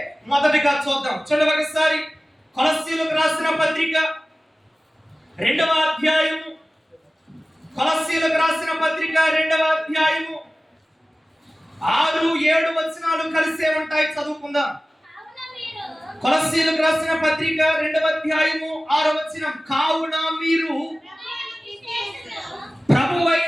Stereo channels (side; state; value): both; normal; correlation 0.97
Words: మొదటిగా చూద్దాం. చూడండి ఒకసారి కొలస్సీయులకు రాసిన పత్రిక 2వ అధ్యాయము. కొలస్సీయులకు రాసిన పత్రిక 2వ అధ్యాయము 6, 7 వచనాలు కలిసే ఉంటాయి. చదువుకుందాం. కొలస్సీయులకు రాసిన పత్రిక 2వ అధ్యాయము 6వ వచనం. కావున మీరు